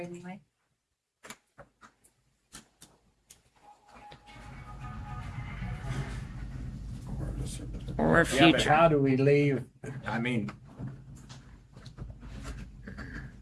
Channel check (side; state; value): both; identical; correlation 1.00